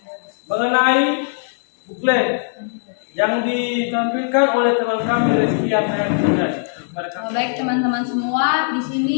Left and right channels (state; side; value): silent; right; 62 dB below the other